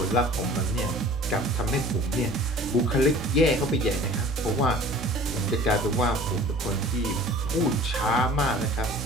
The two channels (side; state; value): both; normal; correlation 0.45